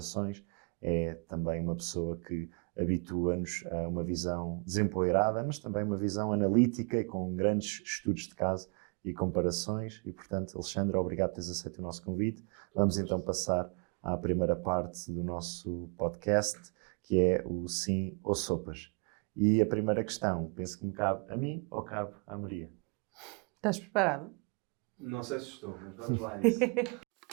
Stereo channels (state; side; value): quieter; left; 35.4 dB